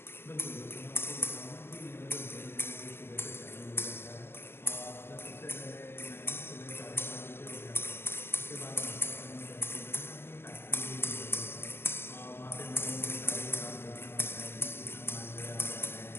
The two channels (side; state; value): right; late; 0.11 ms